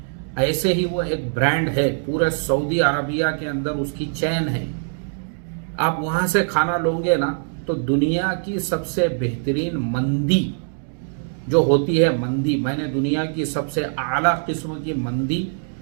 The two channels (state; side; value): silent; left; digital silence